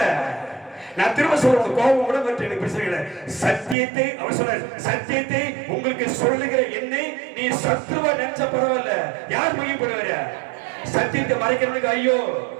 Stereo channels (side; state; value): left; drops out; at 3.8 s